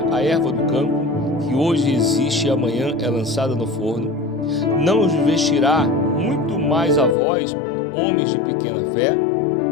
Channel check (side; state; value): right; drops out; at 7.2 s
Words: a erva do campo, que hoje existe e amanhã é lançada no forno, não os vestirá muito mais a vós, homens de pequena fé?